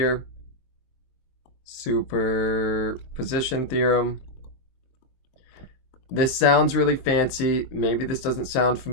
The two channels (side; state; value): right; late; 22 ms